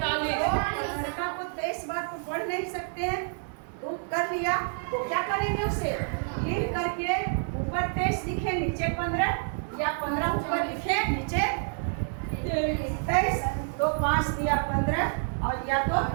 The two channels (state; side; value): silent; left; 59 dB below the other